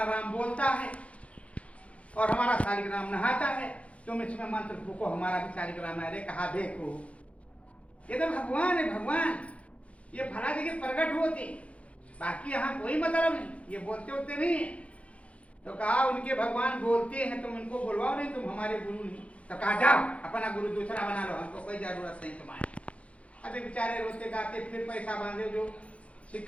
राम बोलता है और हमारा शालिग्राम नहाता है, तुम इसमें मंत्र फूको हमारा भी शालिग्राम है। कहा देखो ये तो भगवान है, भगवान ये फला जगह प्रकट होते, बाकी यहाँ कोई मतलब नहीं, ये बोलते होते नहीं है। तो कहा उनके भगवान बोलते हैं, तुम इनको बुलवाओ, नहीं तुम हमारे गुरु नहीं। तो कहा जाओ अपना गुरु दूसरा बना लो, हमको कोई जरूरत नहीं तुम्हारी। अभी बेचारे रोते गाते फिर पैसा बांधे, जो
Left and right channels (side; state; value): right; late; 0.063 ms